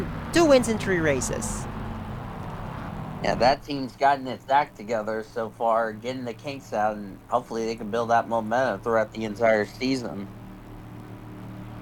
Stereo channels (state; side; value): identical; both; correlation 1.00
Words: 2 wins in 3 races. Yeah, that team's gotten its act together so far, getting the kinks out, and hopefully they can build that momentum throughout the entire season.